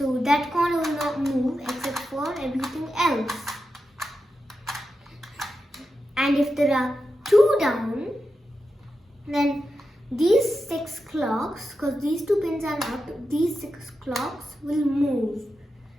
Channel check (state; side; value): normal; both; correlation 0.89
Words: corner will not move except for everything else. And if there are two down, then these 6 clocks, because these 2 pins are up, these 6 clocks will move.